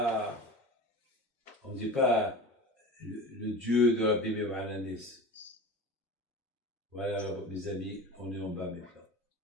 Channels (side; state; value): both; normal; correlation 0.33